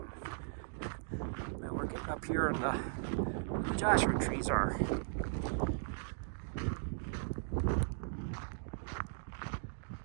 Now we're getting up here and the Joshua trees are.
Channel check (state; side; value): silent; left; digital silence